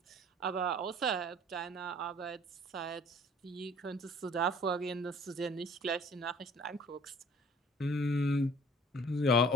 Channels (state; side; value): normal; both; correlation 0.52